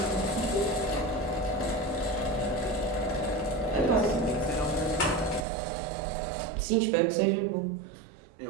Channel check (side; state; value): left; drops out; at 5.5 s